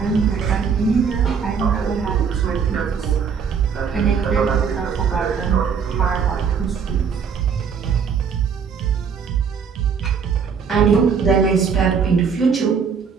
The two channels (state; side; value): quieter; left; 6.5 dB